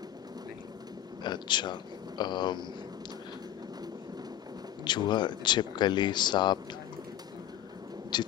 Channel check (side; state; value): right; quieter; 11.6 dB